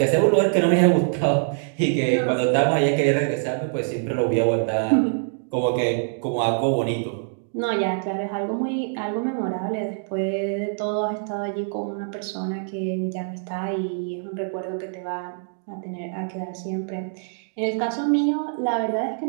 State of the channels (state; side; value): silent; left; digital silence